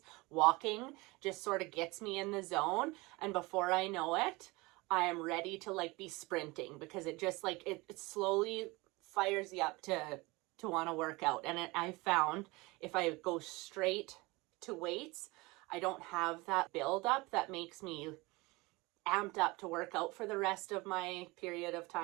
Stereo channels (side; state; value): left; quieter; 23.5 dB